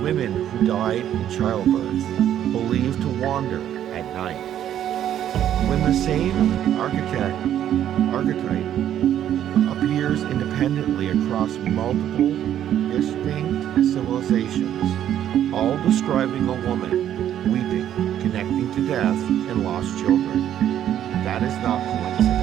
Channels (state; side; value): quieter; left; 10.8 dB